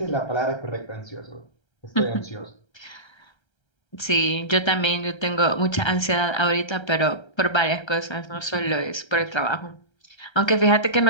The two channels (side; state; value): right; late; 1.3 ms